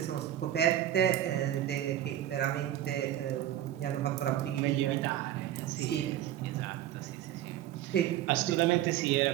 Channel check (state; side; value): quieter; left; 12.2 dB